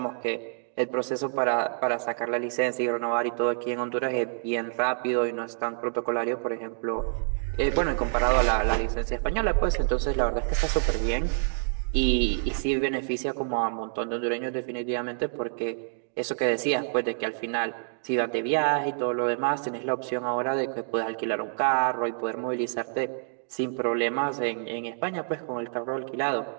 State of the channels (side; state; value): left; silent; digital silence